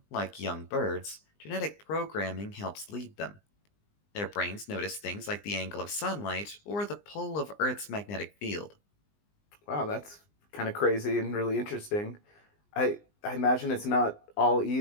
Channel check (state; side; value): late; right; 20 ms